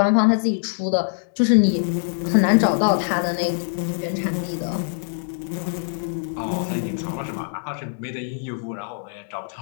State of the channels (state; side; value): silent; right; digital silence